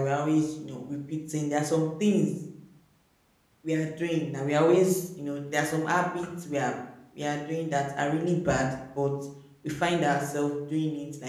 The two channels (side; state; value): both; identical; correlation 1.00